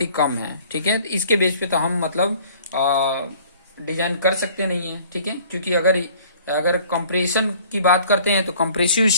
ही कम है, ठीक है। इसके बेस पे तो हम मतलब डिजाइन कर सकते नहीं है, ठीक है, क्योंकि अगर कंप्रेशन की बात करते हैं तो कंप्रेसिव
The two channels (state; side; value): inverted; both; correlation -0.53